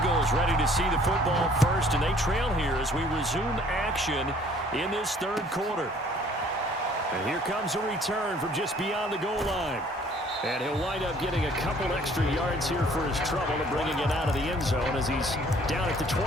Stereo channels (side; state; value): both; normal; correlation 0.57